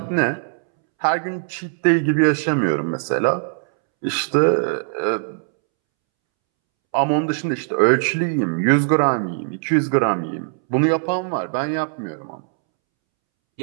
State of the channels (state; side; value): silent; left; 65 dB below the other